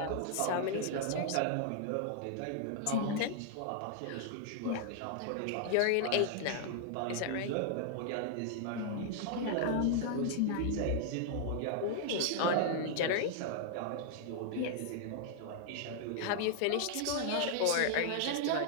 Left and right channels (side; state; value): both; different; correlation 0.00